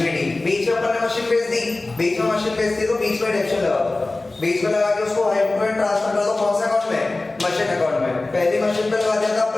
बीच में अपन ने मशीन भेज दी, बीच में मशीन भेज दी तो बीच में डेप्रिसिएशन लगा दो, बीच में लगा के उसको हाइपोटेंट ट्रांसफर कर दो, कौन से अकाउंट में, मशीन अकाउंट में। पहली मशीन पे लगा दिया था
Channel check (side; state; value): right; quieter; 3.1 dB